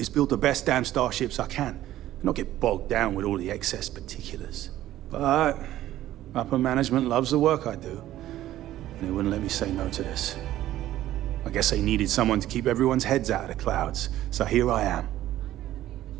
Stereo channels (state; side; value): quieter; left; 13.8 dB